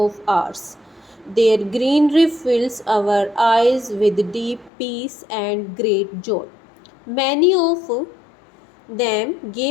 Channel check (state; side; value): drops out; right; at 4.7 s